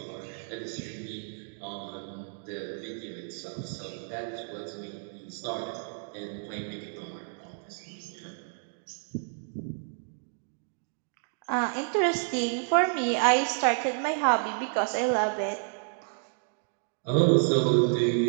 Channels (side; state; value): left; silent; digital silence